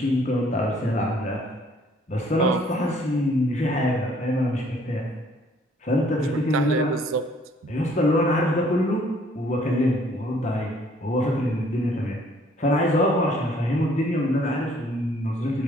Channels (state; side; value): normal; both; correlation 0.61